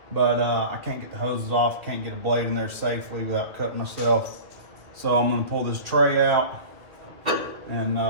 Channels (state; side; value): late; left; 2.4 ms